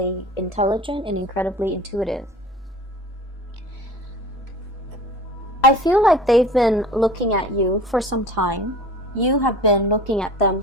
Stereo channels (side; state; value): both; normal; correlation 0.41